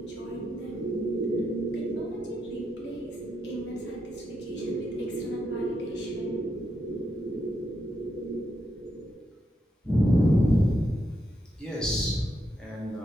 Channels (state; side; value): normal; both; correlation 0.82